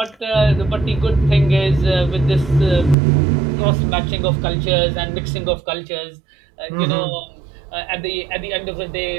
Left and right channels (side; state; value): left; drops out; at 3.0 s